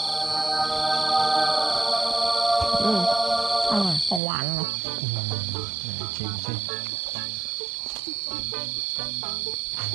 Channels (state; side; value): drops out; left; at 4.2 s